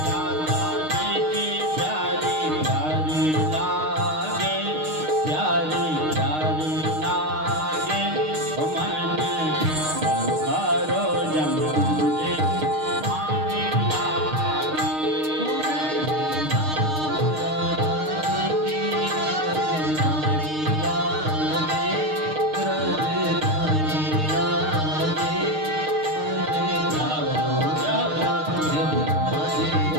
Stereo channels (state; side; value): late; left; 6.5 ms